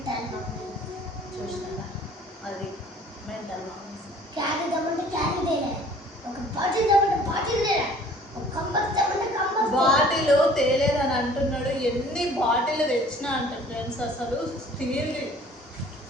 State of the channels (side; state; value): both; normal; correlation 0.52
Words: చూసినా అది మెంటల్ మామూలు. బాటిల్ తేలేదని అంటున్నాడు. ఎన్ని బాటిల్ తెచ్చినా అంట ఫ్రెండ్స్. అసలు స్టీల్